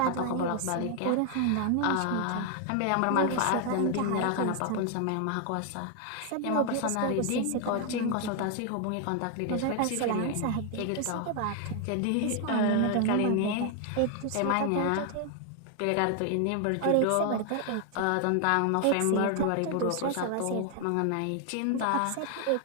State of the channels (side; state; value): both; different; correlation 0.00